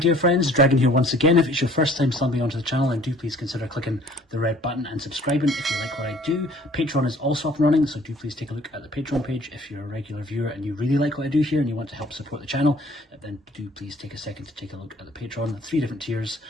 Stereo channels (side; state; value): both; normal; correlation 0.55